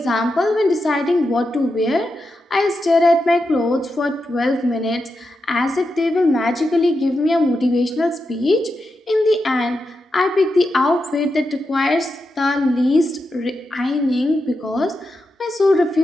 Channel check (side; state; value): both; normal; correlation 0.87